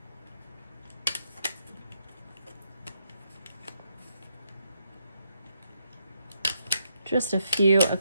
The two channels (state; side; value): inverted; both; correlation -0.77